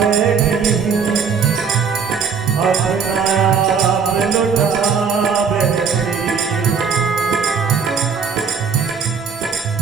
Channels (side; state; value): left; quieter; 6.0 dB